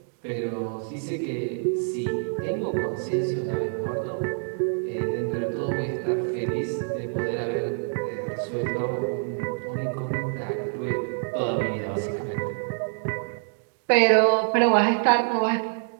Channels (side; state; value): left; silent; 61 dB below the other